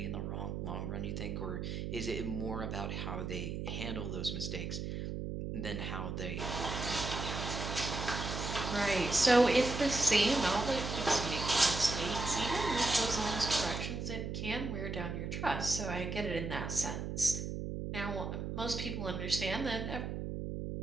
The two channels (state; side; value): noise; right; hum, 4 dB below the sound